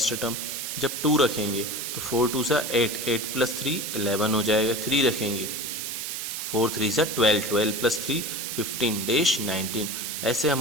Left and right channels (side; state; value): right; noise; hiss, 4 dB below the sound